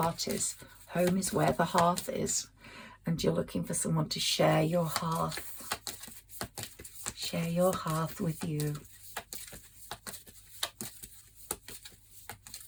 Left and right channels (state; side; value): identical; both; correlation 1.00